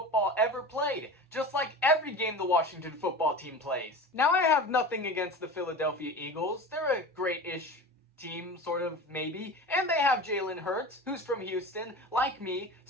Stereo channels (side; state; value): both; normal; correlation 0.32